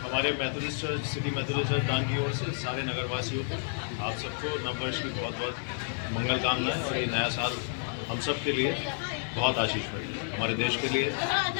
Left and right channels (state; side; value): silent; right; digital silence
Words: हमारे Methodist church, city Methodist church दान की ओर से सारे नगरवासियों को, आप सबको नववर्ष की बहुत बहुत मंगल कामनाएं, और ये नया साल हम सब के लिए बहुत आशीषमय है, हमारे देश के लिए,